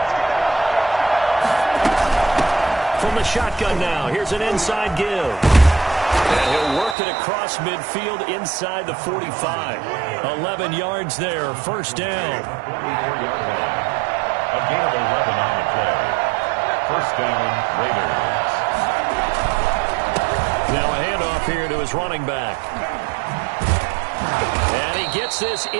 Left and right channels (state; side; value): drops out; left; at 7.0 s